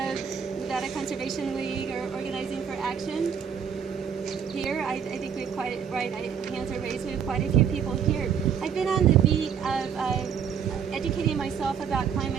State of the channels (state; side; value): quieter; left; 7.5 dB